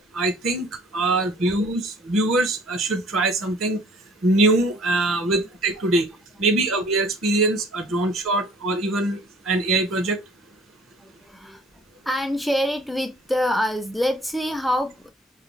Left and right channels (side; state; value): both; normal; correlation 0.53